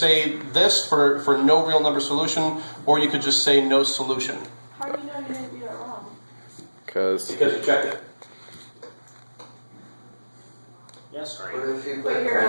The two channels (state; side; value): inverted; both; correlation -1.00